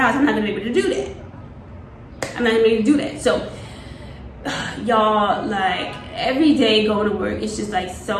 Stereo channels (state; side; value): identical; both; correlation 1.00